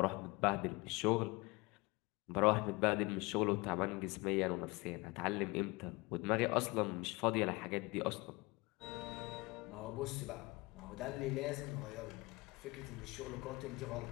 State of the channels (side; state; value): right; quieter; 24.3 dB